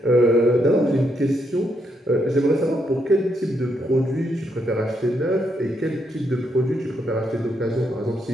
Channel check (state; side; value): normal; both; correlation 0.78